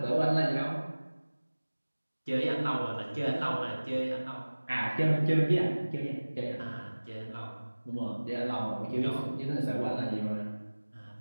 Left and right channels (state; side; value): inverted; both; correlation -1.00